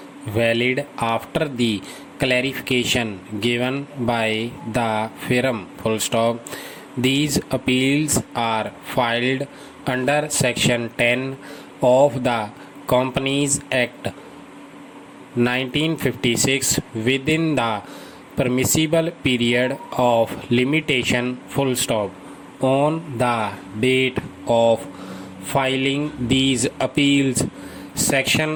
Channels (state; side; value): identical; both; correlation 1.00